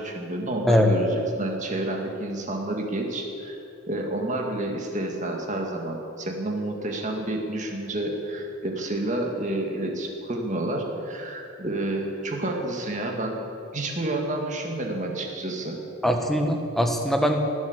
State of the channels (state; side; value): normal; both; correlation 0.53